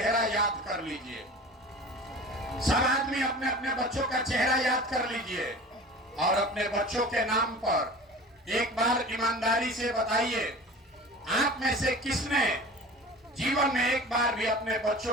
याद कर लीजिए, सब आदमी अपने अपने बच्चों का चेहरा याद कर लीजिए, और अपने बच्चों के नाम पर एक बार ईमानदारी से बताइए, आप में से किसने जीवन में एक बार भी अपने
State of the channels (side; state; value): both; normal; correlation 0.39